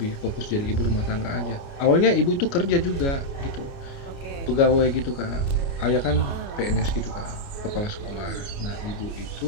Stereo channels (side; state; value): right; late; 29 ms